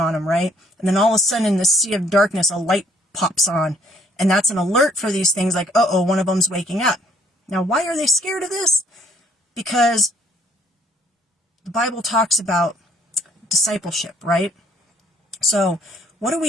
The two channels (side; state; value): both; normal; correlation 0.64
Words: them, right? And then all of a sudden, in the sea of darkness, a light pops on, And that's an alert for these things like, uh-oh, one of them's waking up. Now, why are they scared of this? Because the Bible talks about discipleship, right? So what do